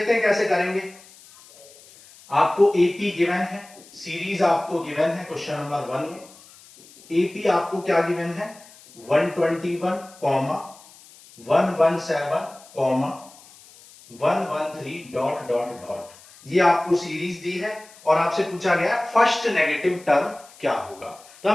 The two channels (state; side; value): noise; left; hiss, 23 dB below the sound